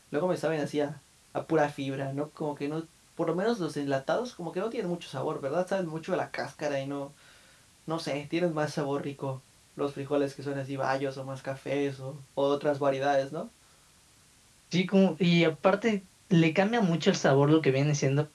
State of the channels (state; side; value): identical; both; correlation 1.00